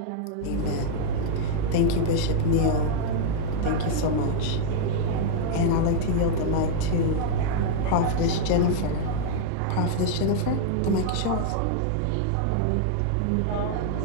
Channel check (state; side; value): different; both; correlation -0.01